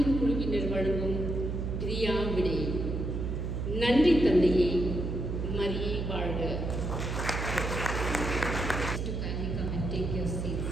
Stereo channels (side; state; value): right; noise; hum, 2 dB below the sound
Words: குழுவினர் வழங்கும் பிரியா விடை. நன்றி தந்தையே, மரியே வாழ்க.